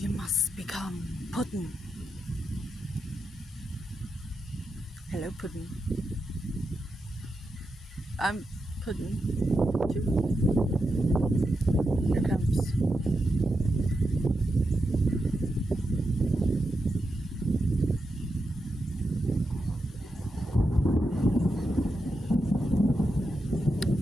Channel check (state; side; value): normal; both; correlation 0.86